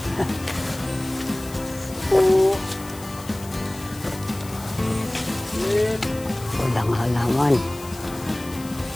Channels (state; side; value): noise; left; hiss, 17 dB below the sound